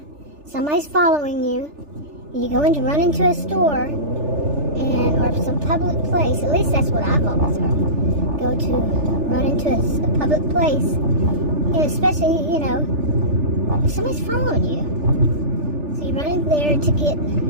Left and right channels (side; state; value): left; late; 3.4 ms